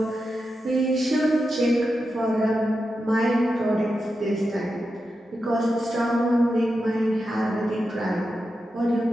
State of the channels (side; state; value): both; normal; correlation 0.89